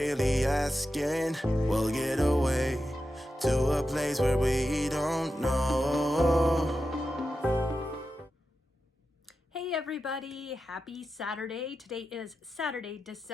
asking. We'll get away to a place where we don't know. Hey everybody, happy Saturday. Today is Saturday,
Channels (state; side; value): normal; both; correlation 0.90